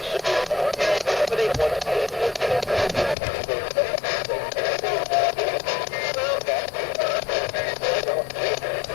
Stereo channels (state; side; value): drops out; right; at 3.2 s